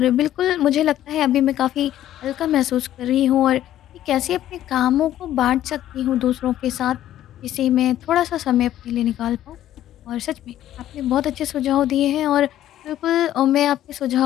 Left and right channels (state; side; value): quieter; right; 12.5 dB